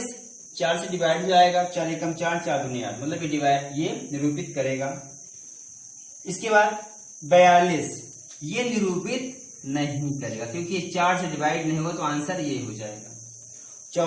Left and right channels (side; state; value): both; identical; correlation 1.00